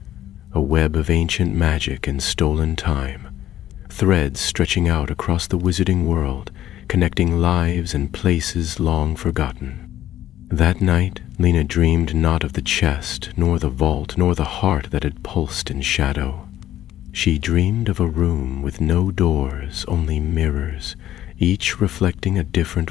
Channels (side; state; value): right; quieter; 12.6 dB